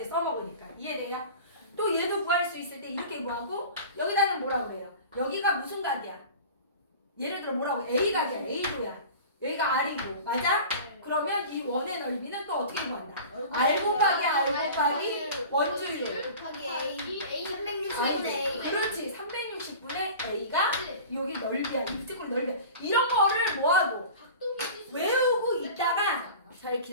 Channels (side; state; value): both; inverted; correlation -0.38